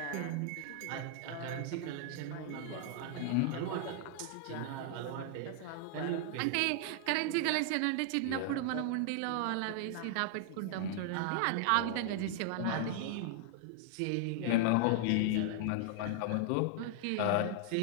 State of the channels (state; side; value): different; both; correlation -0.01